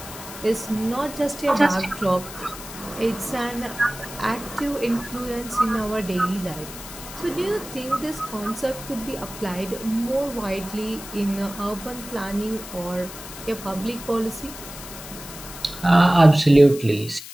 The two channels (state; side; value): noise; left; hiss, 13 dB below the sound